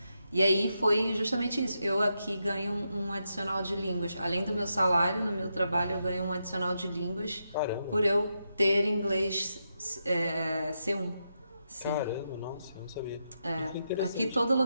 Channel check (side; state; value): both; inverted; correlation -0.84